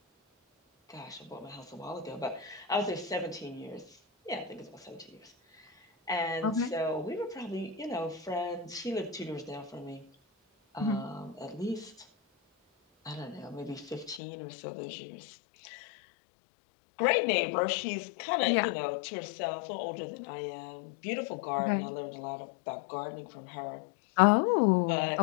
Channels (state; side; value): drops out; right; at 14.2 s